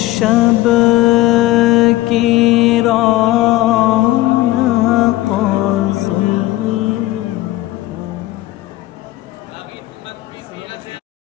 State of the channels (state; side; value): quieter; right; 17.0 dB